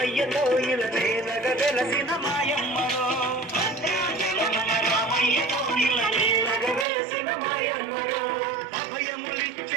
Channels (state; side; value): drops out; left; at 6.9 s